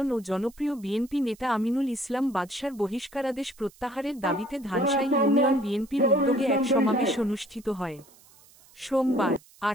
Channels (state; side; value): noise; right; hiss, 26 dB below the sound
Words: ও জনপ্রিয় বিএনপি নেতা আমিনুল ইসলাম বাদশার বহিষ্কারাদেশ প্রত্যাহারের দাবিতে ধানসাই ইউনিয়ন বিএনপির উদ্যোগে এক সমাবেশ অনুষ্ঠিত হয়। সোমবার